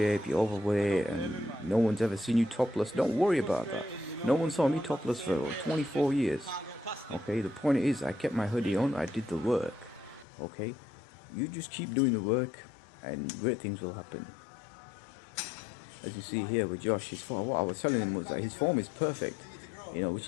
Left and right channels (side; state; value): right; drops out; at 10.2 s